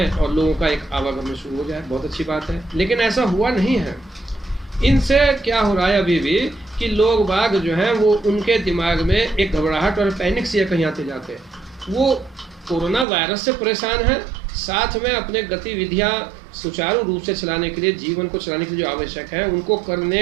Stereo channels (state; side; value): drops out; left; at 13.1 s